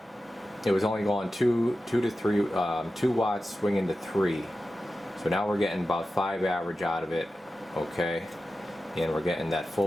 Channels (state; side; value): normal; both; correlation 0.93